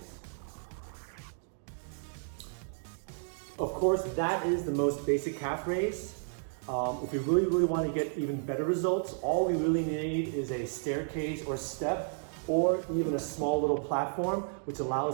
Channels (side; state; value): left; silent; digital silence